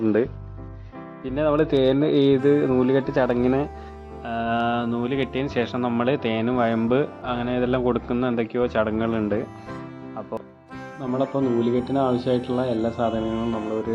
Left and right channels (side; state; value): both; identical; correlation 1.00